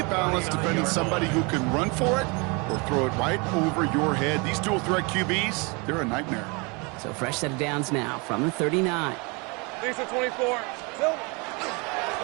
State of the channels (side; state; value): left; quieter; 29.7 dB